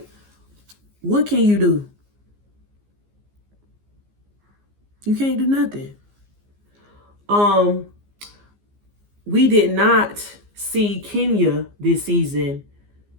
what can you do? You can't do nothing. We did not see Kenya this season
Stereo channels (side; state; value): left; late; 15 ms